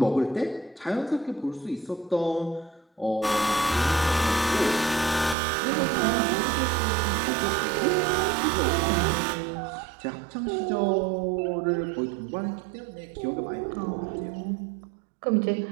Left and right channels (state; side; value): drops out; left; at 5.4 s